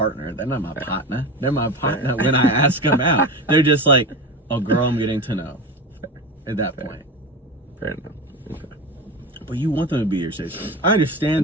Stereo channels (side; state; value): both; normal; correlation 0.26